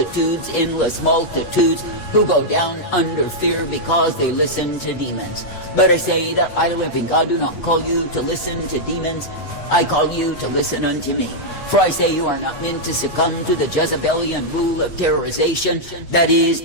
endless multitudes, who go down under fear because they listen to demons. But I say that I, the living God, do not call you to listen to demons. I call you to listen unto me. For I say you are not meant to succumb to the Jezebelian rule of terrorization that is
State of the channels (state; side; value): late; right; 8.3 ms